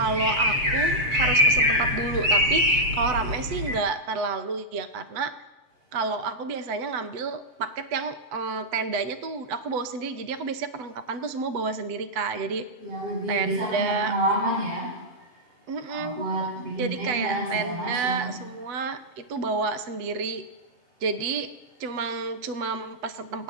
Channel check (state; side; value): late; left; 8.0 ms